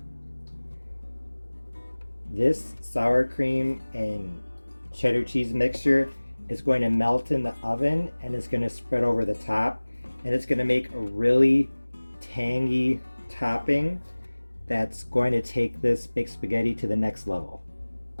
This sour cream and cheddar cheese mixture is going to melt in the oven and it's going to spread over the top, and it's going to make a really tangy topping that's going to take this baked spaghetti to the next level.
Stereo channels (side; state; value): both; inverted; correlation -1.00